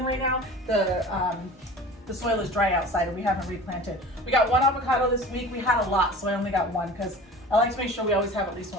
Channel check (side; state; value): both; normal; correlation 0.39